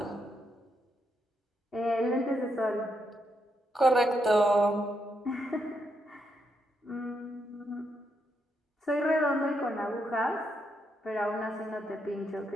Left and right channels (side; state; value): both; normal; correlation 0.80